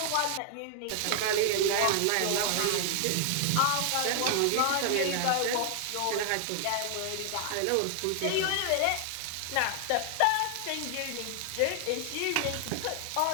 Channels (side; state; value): both; different; correlation 0.00